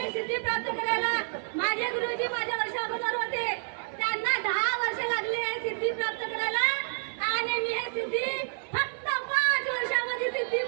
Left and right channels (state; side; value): silent; left; digital silence